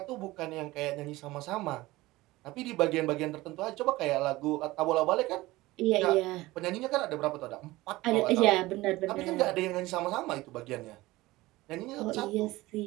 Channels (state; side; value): quieter; left; 19.1 dB